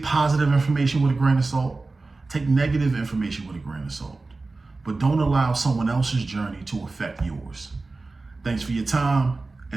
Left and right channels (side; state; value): left; quieter; 3.5 dB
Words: positive information with a grain of salt. Take negative information with a grain of salt. But don't allow someone else's journey to affect yours. Thanks for your time,